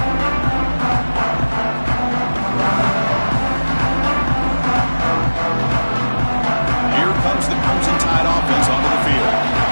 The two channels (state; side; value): inverted; both; correlation -1.00